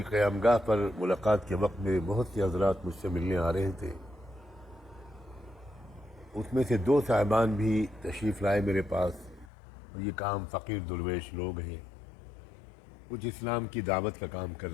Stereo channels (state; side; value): drops out; right; at 9.5 s